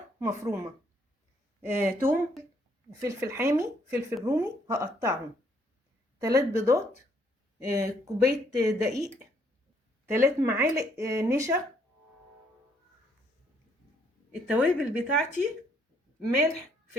مفرومة، توم، فلفل حامي، فلفل رومي هقطعهم، 3 بيضات، كوباية دقيق، 3 معالق نشا. التوابل بتاعتي: ملح،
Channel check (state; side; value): normal; both; correlation 0.68